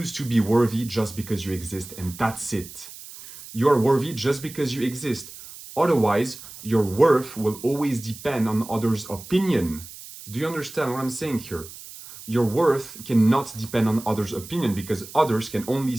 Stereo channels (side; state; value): right; noise; hiss, 15 dB below the sound